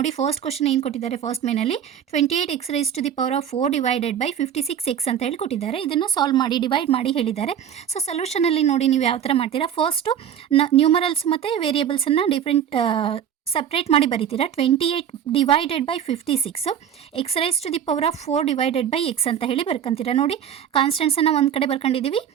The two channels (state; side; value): quieter; left; 9.2 dB